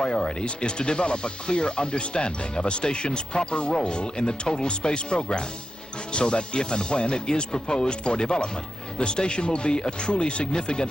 is to develop a clear understanding of a station's proper role in the total space program, so that if and when it is proposed for development, the station will be a truly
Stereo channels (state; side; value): normal; both; correlation 0.89